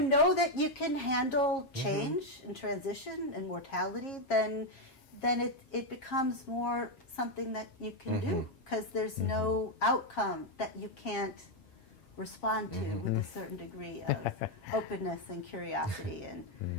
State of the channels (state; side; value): late; right; 7.4 ms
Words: know that you can handle change and transition and mortality, then it becomes more something that you can do, because there's no outcome that you can't respond to with a certain degree of openness and curiosity. And